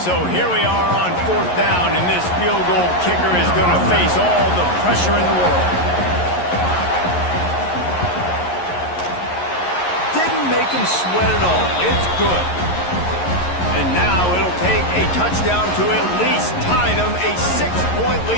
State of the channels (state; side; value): late; right; 11 ms